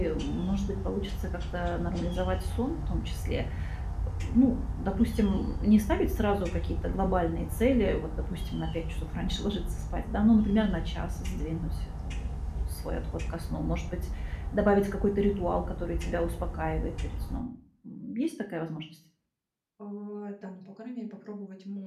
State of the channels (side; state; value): both; identical; correlation 1.00